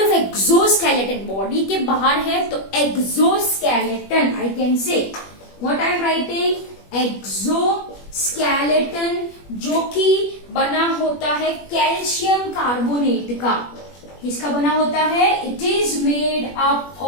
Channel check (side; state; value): right; late; 21 ms